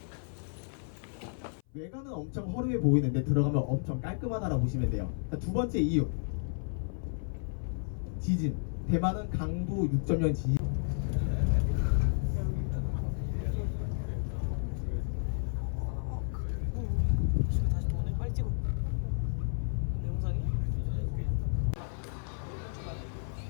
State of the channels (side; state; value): right; silent; 56 dB below the other